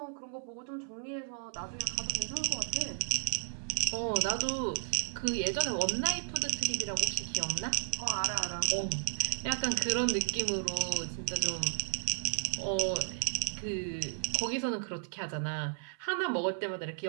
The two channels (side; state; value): left; silent; 55 dB below the other